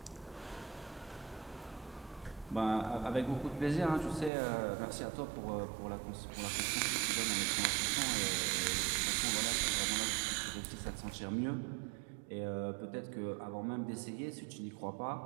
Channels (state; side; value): drops out; left; at 4.3 s